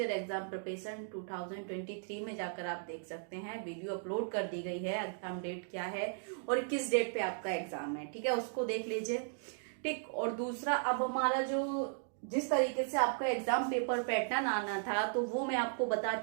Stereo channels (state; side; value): silent; left; digital silence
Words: exam preparation 2023 में जाकर आप देख सकते हैं। वीडियो अपलोड कर दी गई है, एग्जाम डेट क्या है और किस डेट पे आपका एग्जाम है, ठीक है, उसको देख लीजिए। ठीक, और दूसरा, अब हमारा जो जिस तरीके से आपका एग्जाम पेपर पैटर्न आना था, तो वो मैं आपको बता